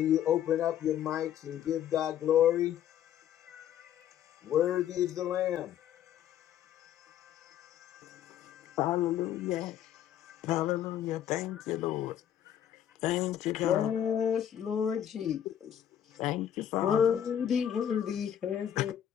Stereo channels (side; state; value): right; quieter; 10.3 dB